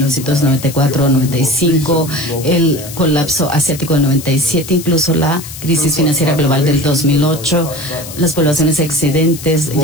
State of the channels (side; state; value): left; noise; hiss, 13 dB below the sound